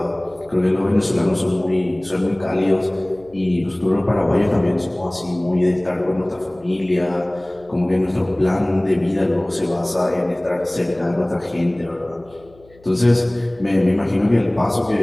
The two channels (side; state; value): left; noise; hum, 27 dB below the sound